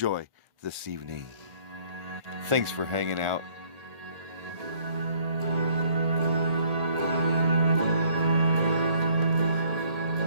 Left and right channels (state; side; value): late; left; 1.5 ms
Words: this evening. Thanks for hanging out.